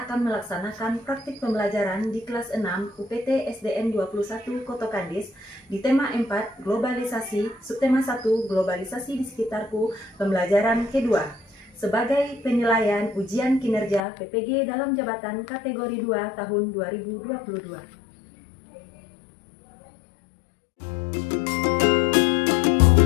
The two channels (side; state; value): right; drops out; at 14.1 s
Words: melaksanakan praktik pembelajaran di kelas 6 UPT SDN 21 Koto Kadis di tema 4 Globalisasi, subtema 1 Globalisasi di sekitarku, pembelajaran kedua, sebagai penilaian ujian kinerja PPG dalam jabatan kategori 2 tahun 2022.